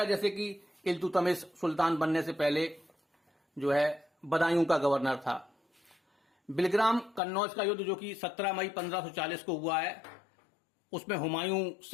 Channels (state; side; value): drops out; right; at 7.2 s